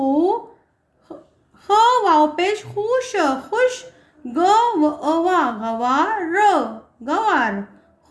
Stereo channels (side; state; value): both; identical; correlation 1.00